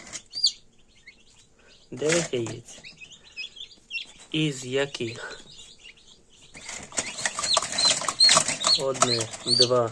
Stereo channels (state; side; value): identical; both; correlation 1.00